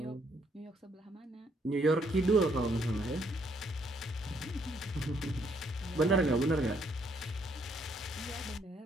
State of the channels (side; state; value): both; normal; correlation 0.70